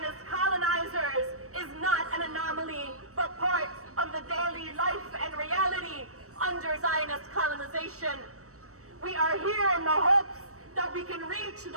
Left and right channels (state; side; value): late; left; 0.65 ms